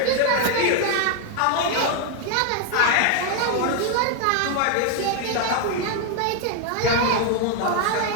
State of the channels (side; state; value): both; different; correlation 0.01